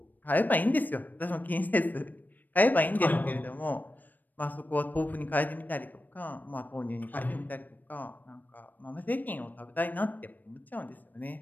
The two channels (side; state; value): right; late; 0.087 ms